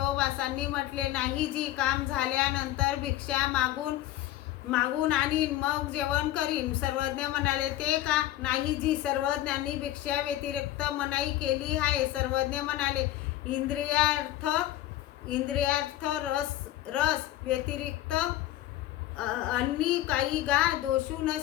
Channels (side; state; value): right; quieter; 14.2 dB